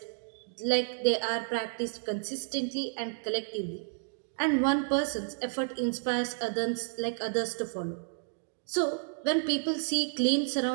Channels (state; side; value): silent; left; digital silence